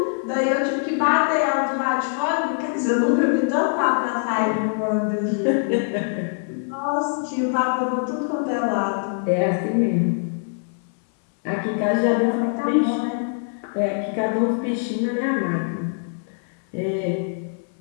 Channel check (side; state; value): right; silent; 63 dB below the other